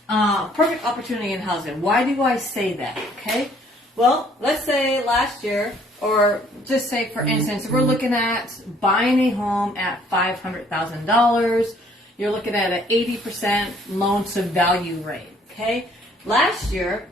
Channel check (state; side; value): normal; both; correlation 0.61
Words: opportunity in housing. Why do I say that? Okay. Well, let's say last year, or just say for instance, we're looking at buying a home at $500,000. You're looking at an 80% loan to value rate. Okay. Last year,